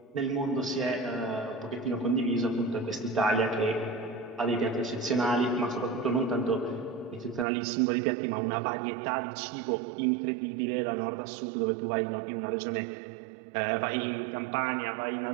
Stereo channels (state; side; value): drops out; left; at 7.5 s